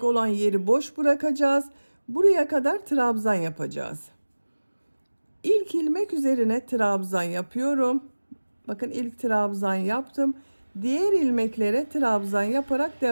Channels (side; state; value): both; inverted; correlation -1.00